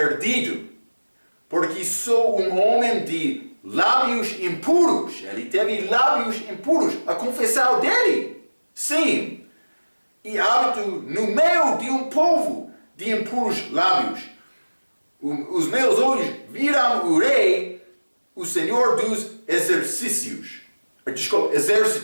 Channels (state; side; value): inverted; both; correlation -1.00